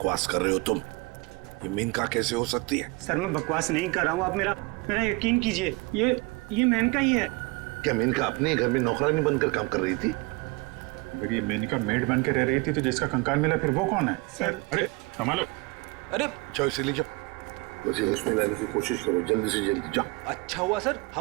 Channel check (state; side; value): quieter; left; 24.9 dB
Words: कर रहे हो तुम? ये मेनका कैसे हो सकती है? सर मैं बकवास नहीं कर रहा हूँ, आप मेरा यकीन कीजिए। ये मेनका ही है। क्या मेनका अपने घर में नौकरानी बनकर काम कर रही थी? अगर ये मेनका मेड बन के रह रही थी तो जिसका कंकाल मिला फिर वो कौन है? सर अरे संभालो। अरे जाओ इसे ले जाओ, मुझे उसमें लाने की कोशिश करो, जल्दी से जल्दी जाओ। अच्छा हुआ सर